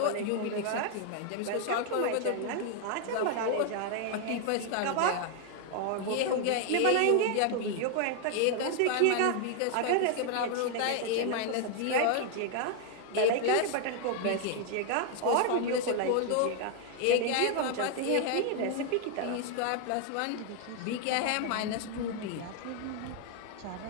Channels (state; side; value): different; both; correlation 0.00